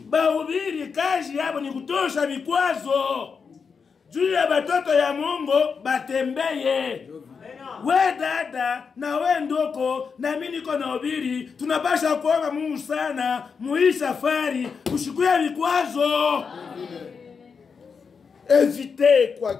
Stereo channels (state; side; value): quieter; right; 5.7 dB